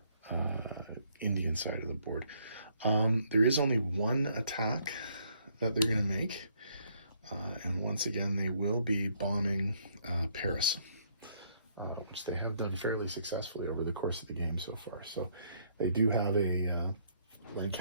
Indian side of the board. There is only one attack that they're going to make, and once again they will be bombing Paris, which they have done fairly successfully over the course of the game so far. So they do have a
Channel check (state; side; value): inverted; both; correlation -0.68